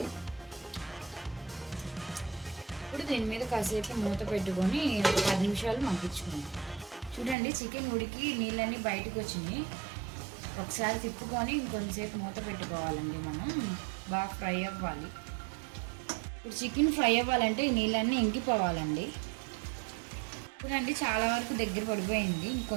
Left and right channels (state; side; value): drops out; left; at 7.4 s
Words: ఇప్పుడు దీని మీద కాసేపు మూత పెట్టుకొని 10 నిమిషాలు మగ్గించుకుందాం. చూడండి, చికెన్ ఉడికి నీళ్ళన్నీ బయటకు వచ్చినాయి. ఒకసారి తిప్పుకొని ఇంకొంచెంసేపు మూత పెట్టుకోవాలండి. మనం బాగా ఫ్రై అవ్వాలి. ఇప్పుడు చికెన్ ఫ్రై అవ్వాలంటే ఈ నీళ్ళన్నీ ఇంకిపోవాలండి. చూడండి, చాలా వరకు దగ్గర పడిపోయింది,